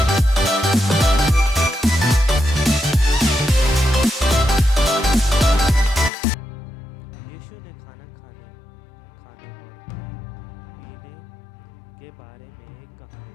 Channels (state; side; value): drops out; right; at 6.1 s